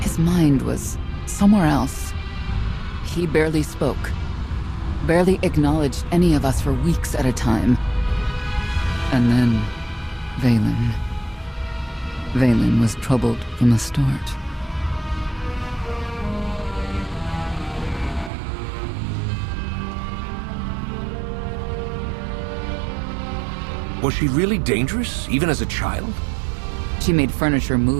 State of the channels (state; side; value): drops out; left; at 18.3 s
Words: His mind was somewhere else. He barely spoke, barely acknowledged any of us for weeks at a time. And then, Vaylin. Vaylin was troubled from the start. Was she really dangerous, even as a child? She made furniture